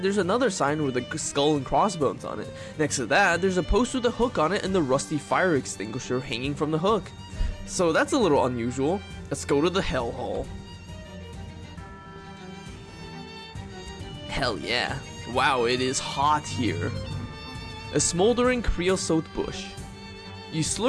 there's another sign with a skull and crossbones on it. Next to that, there's a post with a hook on it and the rusty fire extinguisher hanging from the hook. So that's a little unusual. Let's go to the hell hole. Hell yeah. Wow, it is hot here. A smoldering creosote bush. You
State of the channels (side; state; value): both; identical; correlation 1.00